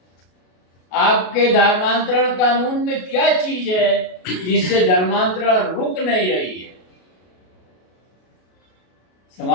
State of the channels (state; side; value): late; right; 33 ms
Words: आपके धर्मांतरण कानून में क्या चीज है जिससे धर्मांतरण रुक नहीं रही है?